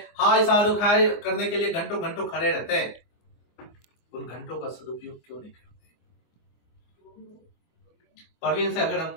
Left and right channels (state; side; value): late; right; 24 ms